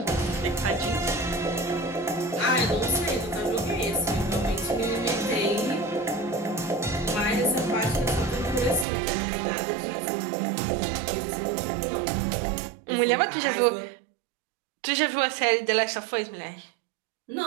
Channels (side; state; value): left; drops out; at 8.8 s